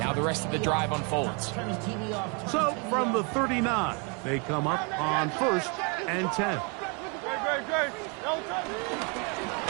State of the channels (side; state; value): left; quieter; 34.2 dB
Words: Now the rest of the drive unfolds. So from the 39, they come up on 1st and 10.